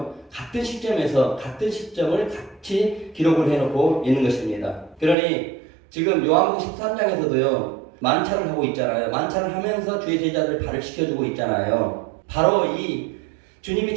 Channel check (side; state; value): left; drops out; at 5.2 s